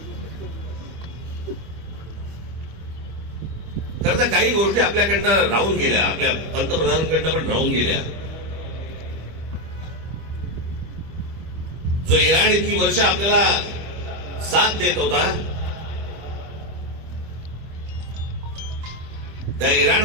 खरं तर काही गोष्टी आपल्याकडनं राहून गेल्या, आपल्या पंतप्रधानांकडनं पण राहून गेल्या. जो इराण इतकी वर्ष आपल्याला साथ देत होता, त्या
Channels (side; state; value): left; late; 25 ms